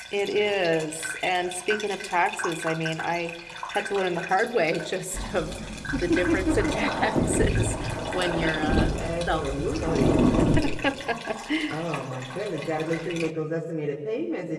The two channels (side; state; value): both; identical; correlation 1.00